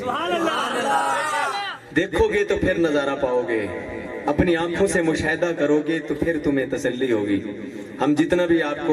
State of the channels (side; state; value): both; identical; correlation 1.00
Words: دیکھو گے تو پھر نظارہ پاؤ گے، اپنی آنکھوں سے مشاہدہ کرو گے تو پھر تمہیں تسلی ہوگی۔ ہم جتنا بھی آپ